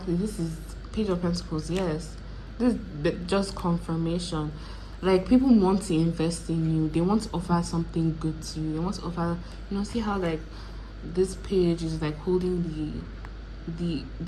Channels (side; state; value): both; identical; correlation 1.00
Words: This is Page of Pentacles. Yes, this is just confirmation. Like people want to invest in you. They want to offer something good to you. They want to offer. See how like this page is like holding the